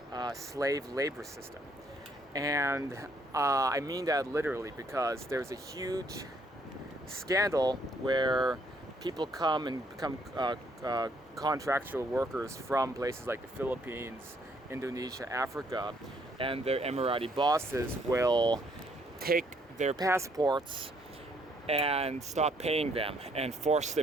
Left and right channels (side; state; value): both; normal; correlation 0.68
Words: slave labor system. And I mean that literally, because there's a huge scandal where people come and become contractual workers from places like the Philippines, Indonesia, Africa, and their Emirati bosses will take their passports and stop paying them and force